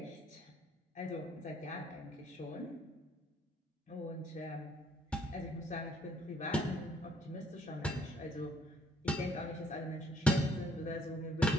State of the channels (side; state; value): both; normal; correlation 0.65